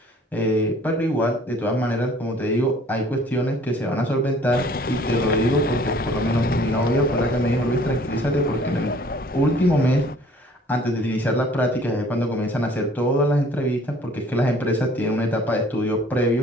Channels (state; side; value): normal; both; correlation 0.54